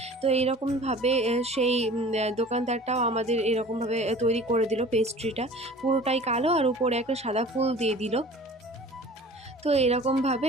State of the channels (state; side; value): normal; both; correlation 0.44